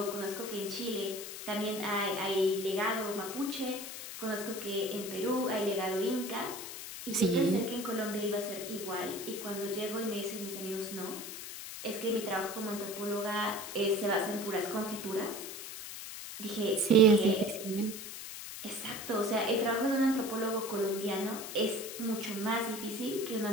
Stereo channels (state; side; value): noise; left; hiss, 9 dB below the sound